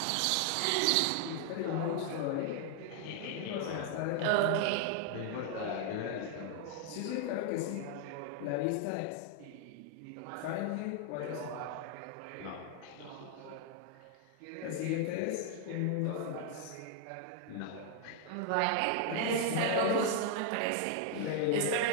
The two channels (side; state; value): both; different; correlation 0.00